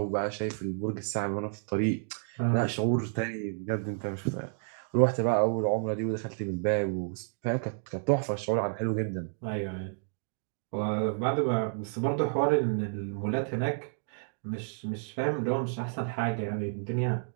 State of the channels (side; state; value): left; silent; digital silence